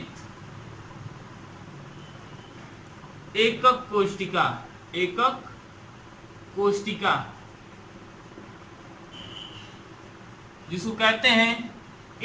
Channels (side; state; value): both; identical; correlation 1.00